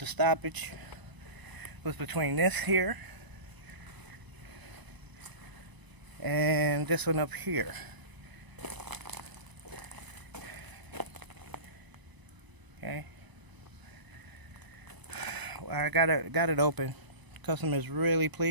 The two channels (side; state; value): left; late; 1.0 ms